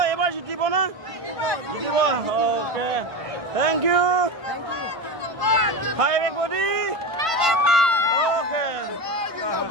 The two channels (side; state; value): left; late; 1.5 ms